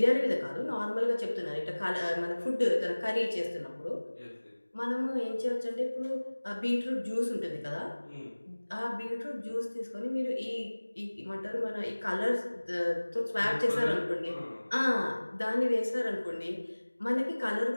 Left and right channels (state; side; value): inverted; both; correlation -1.00